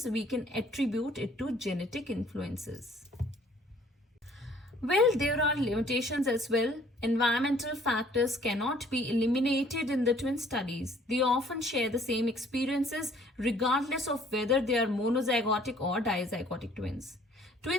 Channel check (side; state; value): both; normal; correlation 0.58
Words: we can attribute it to genetic influences. Well, there are limitations as well. Environmental factors cannot be eliminated in the twin studies. They often share the same experiences regardless of whether they are monozygotic or dizygotic twins.